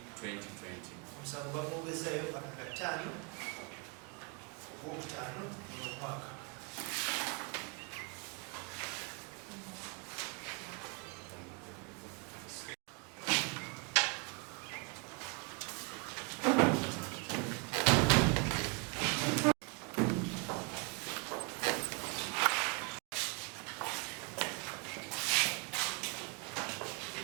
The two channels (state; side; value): quieter; left; 31.4 dB